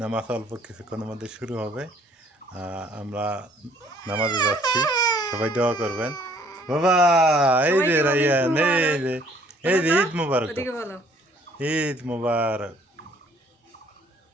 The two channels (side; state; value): both; normal; correlation 0.60